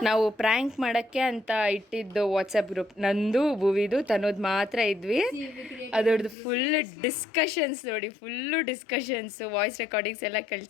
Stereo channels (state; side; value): drops out; right; at 6.4 s